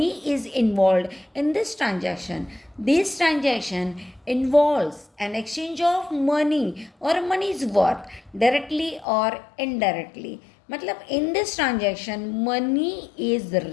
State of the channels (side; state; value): right; drops out; at 9.1 s